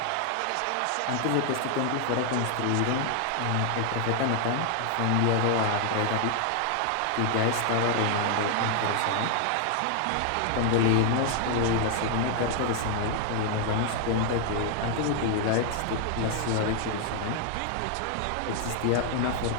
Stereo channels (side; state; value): both; different; correlation 0.00